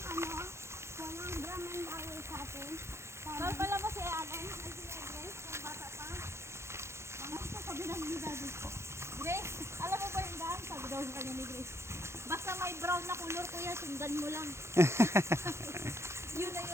walang drum and bawal sa atin. Mahal pala mo si Allen. Ay, si Grace. Yung bata pa. Mga ito, sabi na ni Daddy. Grace, alam mo ba yung daan? Sabi daw sa kanya ni Grace. Basta may brown na kulor, kuya, sundan mo lang. Yun na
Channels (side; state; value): left; late; 0.13 ms